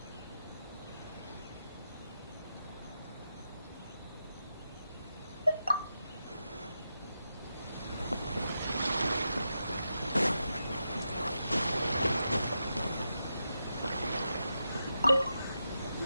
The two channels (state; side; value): inverted; both; correlation -0.87